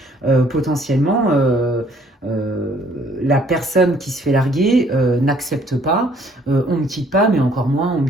potentiellement. La personne qui se fait larguer n'accepte pas, on ne me quitte pas, mais encore moins on me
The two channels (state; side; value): normal; both; correlation 0.61